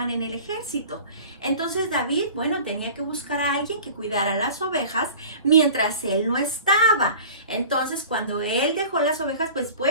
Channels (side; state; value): both; inverted; correlation -0.41